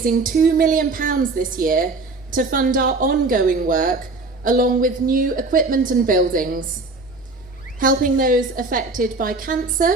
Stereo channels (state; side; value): quieter; left; 3.5 dB